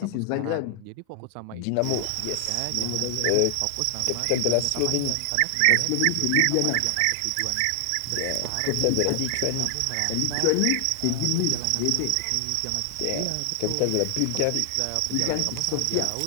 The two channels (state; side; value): different; both; correlation 0.00